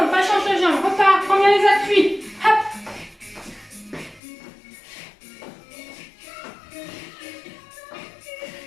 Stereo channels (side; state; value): right; drops out; at 4.2 s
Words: pas change de jambe, repars, prends bien les appuis. Hop.